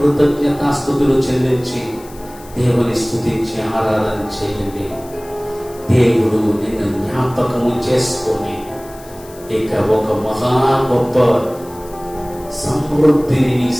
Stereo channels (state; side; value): noise; left; hiss, 22 dB below the sound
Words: చెల్లించి దేవుని స్తుతించి ఆరాధన చేయండి. దేవుడు నిన్ను జ్ఞాపకము చేసుకొని ఇక ఒక మహా గొప్ప సమృద్ధిని నీ